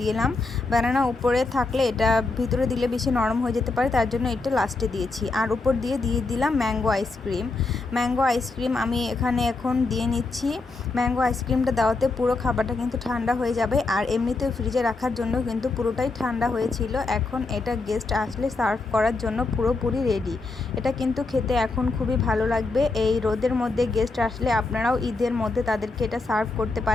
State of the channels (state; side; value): quieter; right; 3.5 dB